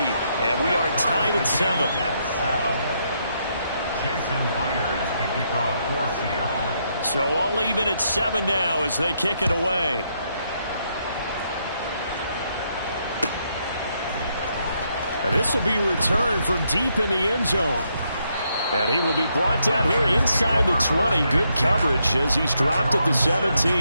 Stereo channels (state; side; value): inverted; both; correlation -0.77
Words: we are tied at 7. Jason Myers to kick off for Seattle. So all even at 7 now as they kick it away. And this will be returned from deep in the end zone. And he will be brought down here inside the 20. Good coverage as he's dropped at the